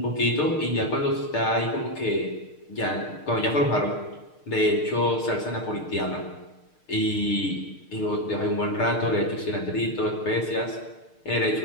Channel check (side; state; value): right; late; 6.6 ms